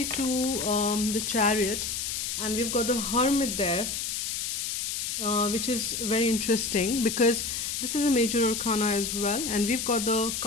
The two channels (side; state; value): left; noise; hiss, 3 dB below the sound